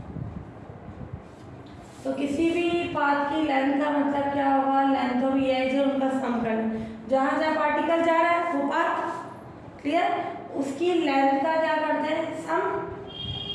तो किसी भी पाथ की लेंथ का मतलब क्या होगा, लेंथ ऑफ ई आई जे, उनका सम करना। जहाँ जहाँ पार्टिकल जा रहा है वो पाथ, क्लियर, उसकी लेंथ का क्या करते हैं, सम,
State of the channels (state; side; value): identical; both; correlation 1.00